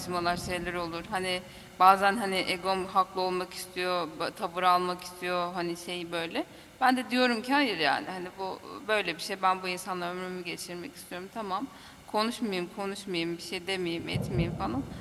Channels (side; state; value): both; identical; correlation 1.00